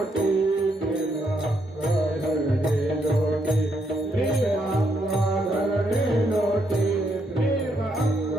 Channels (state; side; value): normal; both; correlation 0.76